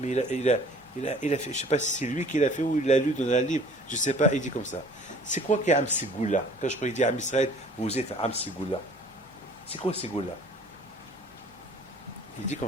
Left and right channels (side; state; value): both; normal; correlation 0.51